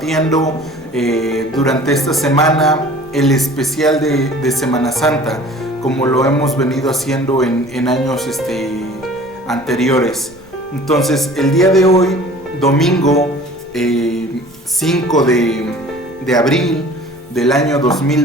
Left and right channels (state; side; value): noise; right; rumble, 27 dB below the sound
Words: durante esta semana el especial de Semana Santa, como lo hemos venido haciendo en años anteriores. Entonces, el día de hoy, domingo 5 de abril del año